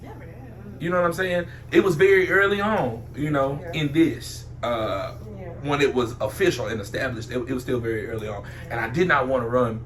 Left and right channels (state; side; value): identical; both; correlation 1.00